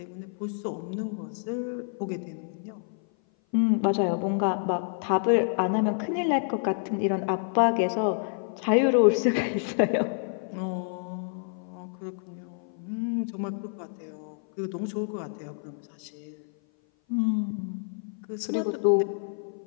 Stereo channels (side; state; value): right; silent; 56 dB below the other